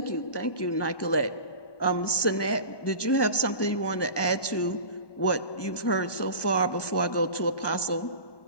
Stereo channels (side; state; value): right; late; 1.2 ms